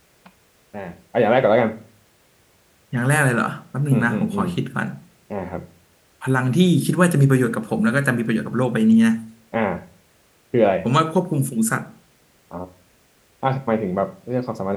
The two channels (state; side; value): identical; both; correlation 1.00